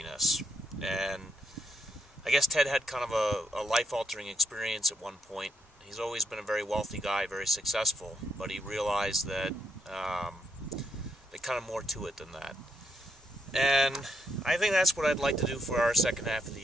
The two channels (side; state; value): both; normal; correlation 0.77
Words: And I guess Ted had kind of a life-altering experience at one point. He's always been a very wealthy guy, very successful, but he realized that there's kind of more to it than that. And I think that's what I'd like to do for our second half of the